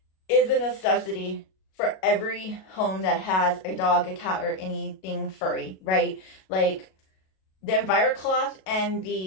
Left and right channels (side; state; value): right; late; 37 ms